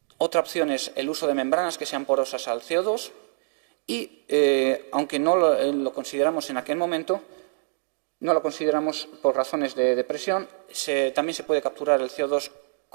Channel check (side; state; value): left; silent; digital silence